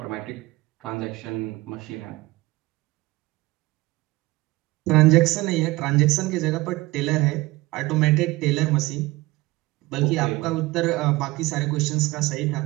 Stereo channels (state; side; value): quieter; left; 20.6 dB